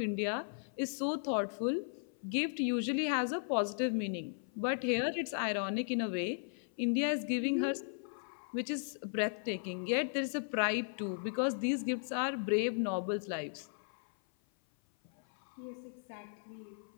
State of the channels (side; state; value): right; silent; 53 dB below the other